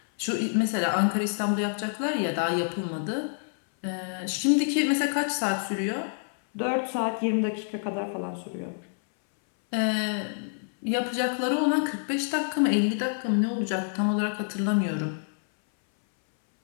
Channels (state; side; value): silent; right; 60 dB below the other